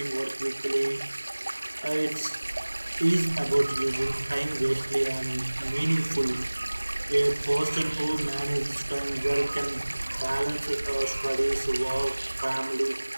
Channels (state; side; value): inverted; both; correlation -1.00